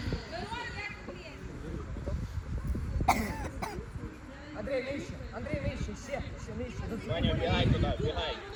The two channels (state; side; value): identical; both; correlation 1.00